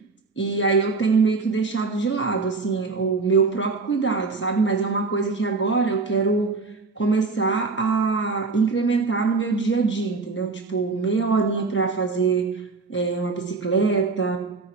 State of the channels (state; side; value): quieter; left; 4.2 dB